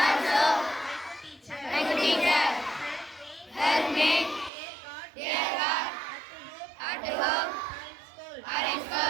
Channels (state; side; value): drops out; left; at 4.5 s